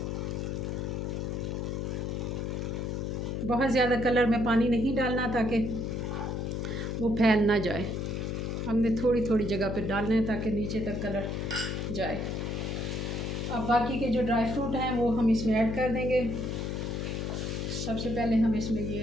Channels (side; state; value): left; noise; hum, 2 dB below the sound